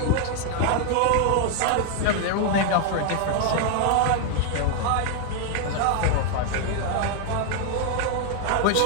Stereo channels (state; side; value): different; both; correlation 0.00